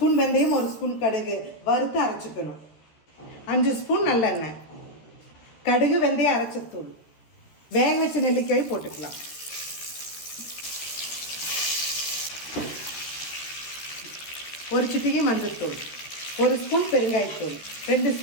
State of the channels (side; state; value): right; late; 13 ms